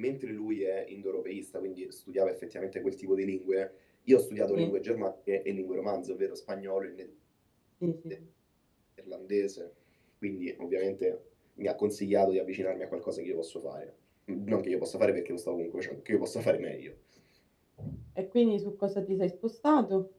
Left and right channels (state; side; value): identical; both; correlation 1.00